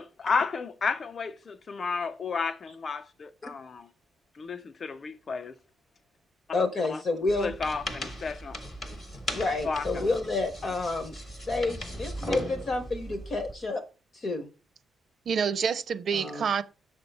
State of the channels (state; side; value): normal; both; correlation 0.80